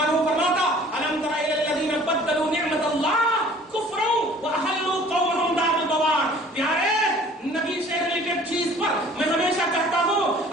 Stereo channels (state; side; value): normal; both; correlation 0.51